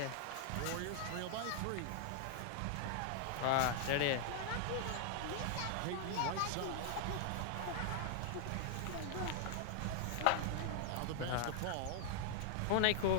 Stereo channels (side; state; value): both; different; correlation 0.00